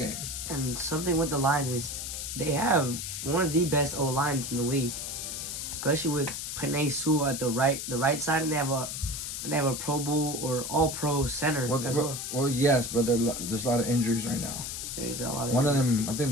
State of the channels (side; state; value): left; noise; hiss, 5 dB below the sound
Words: And something with the Lions is they have one of the best O-lines in the league, especially with Penei Sewell at the right side, and they have a Pro Bowl or All-Pro center as well. Well, yes, but there's a lot of injuries right now. There's a lot of One of them, I think